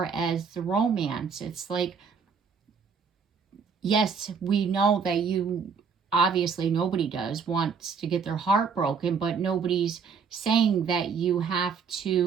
as the romance, it's like, yes, we know that you, obviously nobody wants to get their heart broken, but nobody's saying that you have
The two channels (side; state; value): left; quieter; 5.9 dB